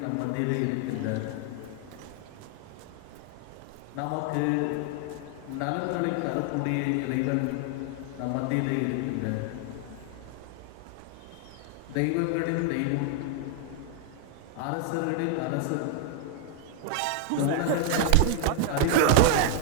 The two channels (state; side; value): different; both; correlation 0.00